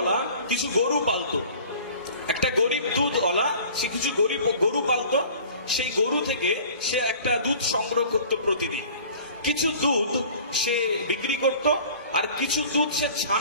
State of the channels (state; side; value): inverted; both; correlation -0.46